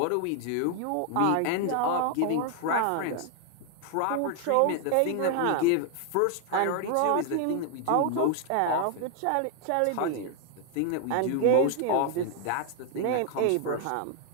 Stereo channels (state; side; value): different; both; correlation 0.00